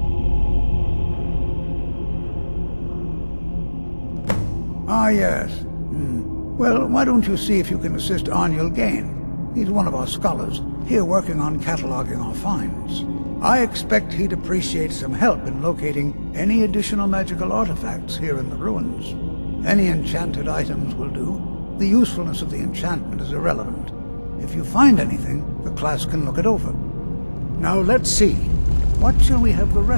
Ah, yes. Well, why don't you see if you can assist Arniel Gain? He's one of our scholars, here working on cataloging our finds. I expect he'd appreciate some help in locating any additional magical artifacts here in the ruins. Any enchanted items will do. The usefulness of the enchantment is irrelevant. If you find anything, the class can look it over. Now let's see. What shall we have the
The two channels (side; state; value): both; inverted; correlation -1.00